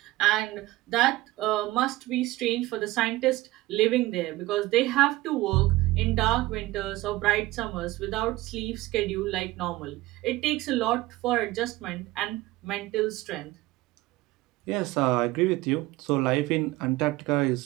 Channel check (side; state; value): left; quieter; 18.7 dB